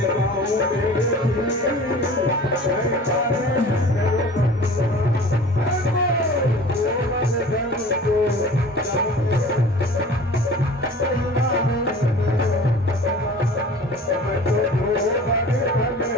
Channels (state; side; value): normal; both; correlation 0.42